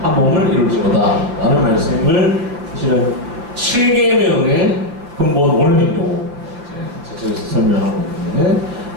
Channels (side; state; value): left; late; 6.0 ms